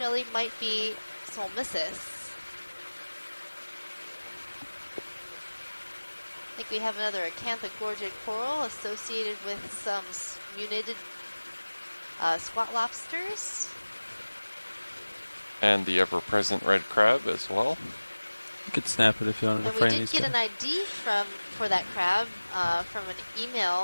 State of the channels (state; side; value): inverted; both; correlation -1.00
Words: might be Solmissus. I think we have another acanthogorgid coral associated with some munited squat lobsters. And the ever-present red crab as well. You could snap it if you want to. And we did get an ID for that crab from an